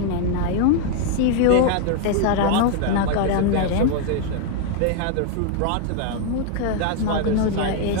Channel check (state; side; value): different; both; correlation 0.00